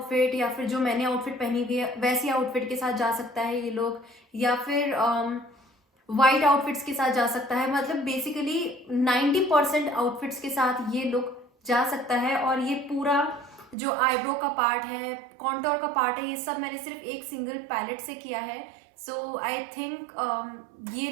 या फिर जो मैंने आउटफिट पहनी हुई है वैसी आउटफिट के साथ जा सकता है ये लोग, या फिर वाइट आउटफिट्स के साथ जा सकता है। मतलब बेसिकली 90% आउटफिट्स के साथ ये लुक जा सकता है। और ये पूरा जो आईब्रो का पार्ट है, कॉन्टोर का पार्ट है, ये सब मैंने सिर्फ एक सिंगल पैलेट से किया है। सो आई थिंक ये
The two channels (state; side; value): drops out; left; at 13.8 s